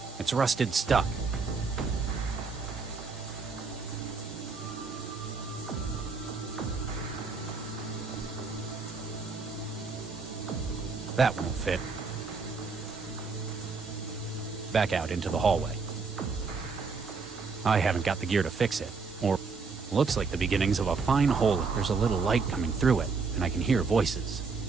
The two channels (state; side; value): quieter; left; 4.7 dB